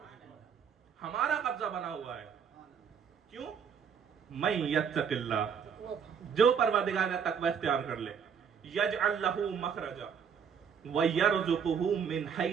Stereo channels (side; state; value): left; quieter; 7.1 dB